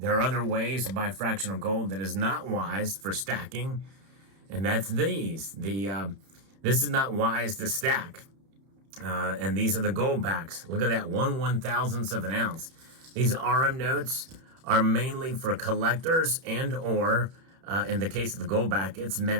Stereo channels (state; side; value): late; left; 31 ms